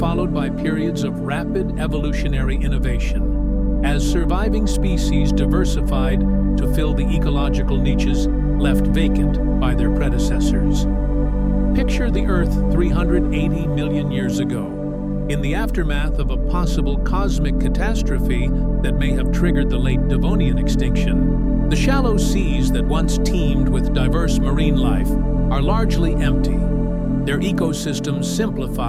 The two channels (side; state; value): both; identical; correlation 1.00